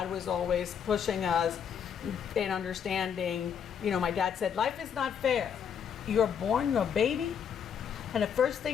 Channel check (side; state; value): right; quieter; 7.8 dB